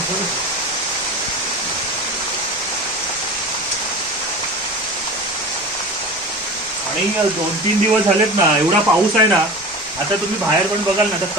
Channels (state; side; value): normal; both; correlation 0.34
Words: आणि 2-3 दिवस झालेत ना, एवढा पाऊस आहे ना. आता तुम्ही बाहेर पण बघाल ना, तर